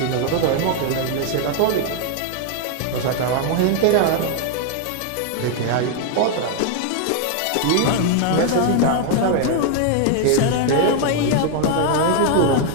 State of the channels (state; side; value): different; both; correlation 0.00